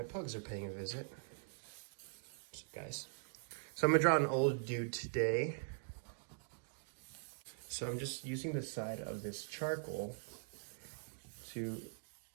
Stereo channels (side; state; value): left; silent; digital silence